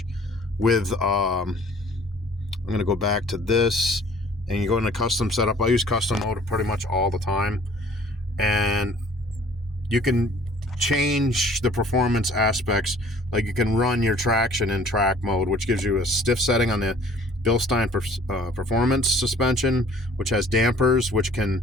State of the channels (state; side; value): normal; both; correlation 0.53